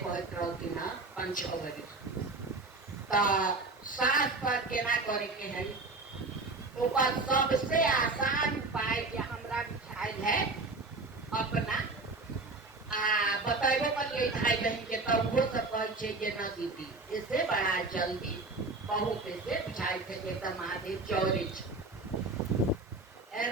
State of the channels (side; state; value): left; quieter; 3.5 dB